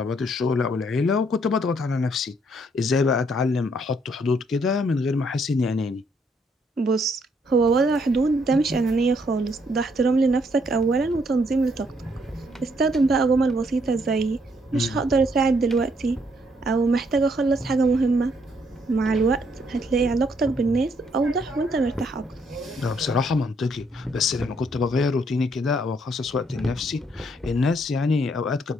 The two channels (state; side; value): normal; both; correlation 0.70